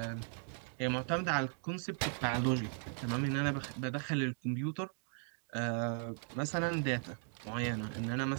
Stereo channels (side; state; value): left; silent; 53 dB below the other